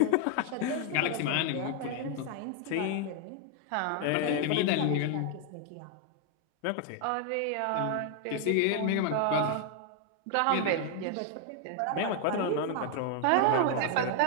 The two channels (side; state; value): both; different; correlation 0.00